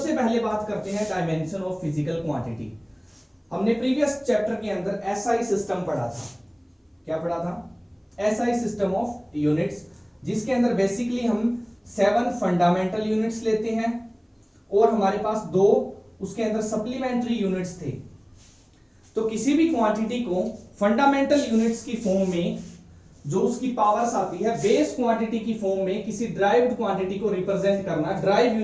पहले बात करते हैं डायमेंशन ऑफ फिजिकल क्वांटिटी। हमने प्रीवियस चैप्टर के अंदर SI सिस्टम पढ़ा था। क्या पढ़ा था? SI सिस्टम ऑफ यूनिट्स, जिसके अंदर बेसिकली हम 7 फंडामेंटल यूनिट्स लेते हैं और हमारे पास 2 उसके अंदर सप्लीमेंट्री यूनिट्स थे। तो किसी भी क्वांटिटी को फंडामेंटल यूनिट्स की फॉर्म में जो उसकी पावर्स आती है, बेस क्वांटिटी की फॉर्म में किसी ड्राइव्ड क्वांटिटी को रिप्रेजेंट करना, ड्राइव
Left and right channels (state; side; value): identical; both; correlation 1.00